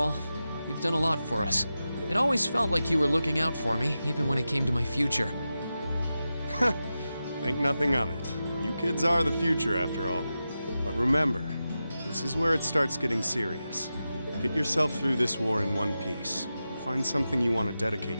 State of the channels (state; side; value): inverted; both; correlation -0.92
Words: You've done a lot for us. It always felt like you were looking out for me, even when it came to my future. Think nothing of it. You kids are the future, after all. But remember, this is where it starts getting serious. Get yourself through this war in one piece. Find something you want to dedicate